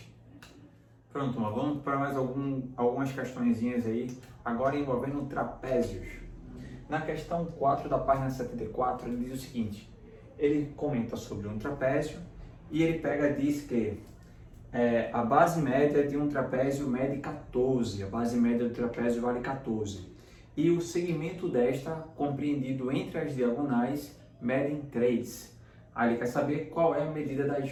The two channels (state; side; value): identical; both; correlation 1.00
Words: Pronto, mas vamos para mais algumas questõezinhas aí, agora envolvendo trapézios. Na questão 4 da página 74, ele diz o seguinte, ele comenta sobre um trapézio e ele diz que a base média de um trapézio mede 14, a base média do trapézio vale 14. E o segmento desta, compreendido entre as diagonais, medem 3. Aí ele quer saber qual é a medida das